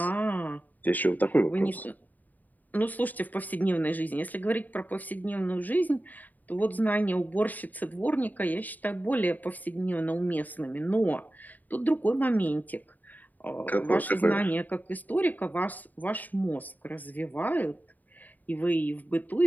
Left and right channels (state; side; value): late; right; 0.082 ms